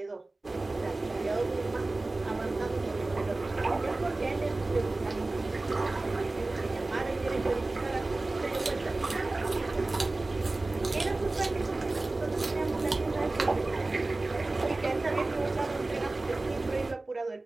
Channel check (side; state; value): left; quieter; 3.1 dB